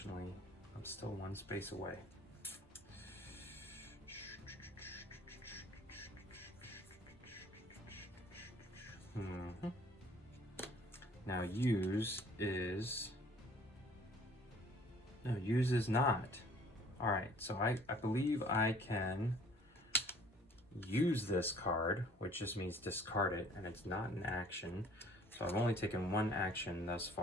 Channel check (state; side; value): normal; both; correlation 0.54